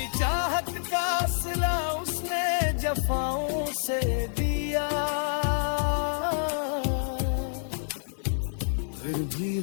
चाहत का सिला उसने जफाओं से दिया, फिर भी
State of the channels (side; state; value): right; silent; digital silence